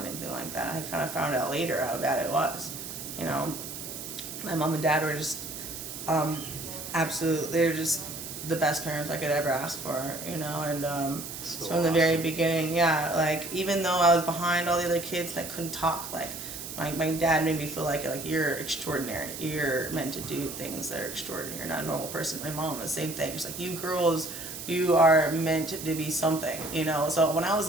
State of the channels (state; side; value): noise; right; hiss, 9 dB below the sound